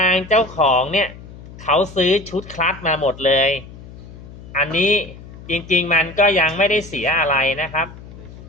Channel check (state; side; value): noise; left; hum, 17 dB below the sound